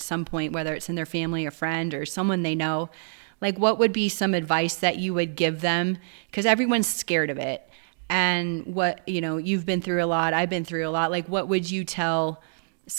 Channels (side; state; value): left; silent; digital silence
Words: some point, whether it's in their family, a friend, or someone they know. Like, what would be some advice that you would give them? Because everyone's scared of it. And you've been through a lot. I've been through a lot. Like, what would you tell